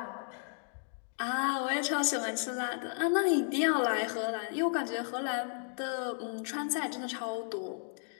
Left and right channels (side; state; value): right; silent; 55 dB below the other